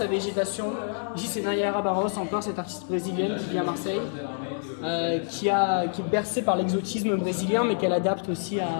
végétation. Ici, c'est Nayara Barros, encore cette artiste brésilienne qui vit à Marseille, qui est bercée par l'exotisme brésilien, mais qu'elle adapte aussi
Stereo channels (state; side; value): silent; right; 60 dB below the other